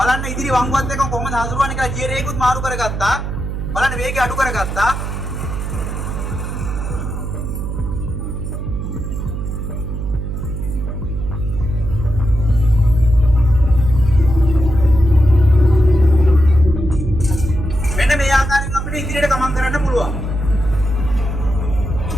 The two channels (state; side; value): noise; right; hum, 4 dB below the sound